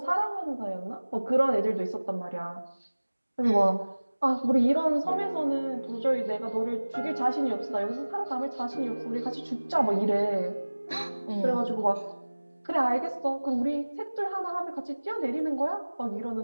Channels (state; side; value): inverted; both; correlation -1.00